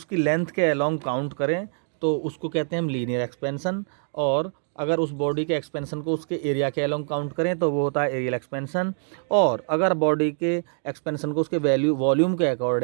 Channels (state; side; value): silent; left; digital silence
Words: लेंथ के अलोंग काउंट करें तो उसको कहते हैं हम लीनियर एक्सपेंशन, और अगर उस बॉडी के एक्सपेंशन को उसके एरिया के अलोंग काउंट करें तो वो होता है एरियल एक्सपेंशन, और अगर बॉडी के एक्सपेंशन को उसके वॉल्यूम के